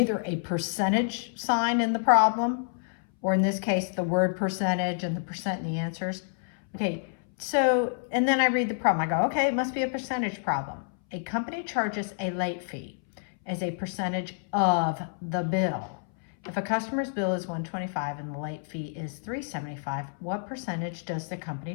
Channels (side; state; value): right; silent; 59 dB below the other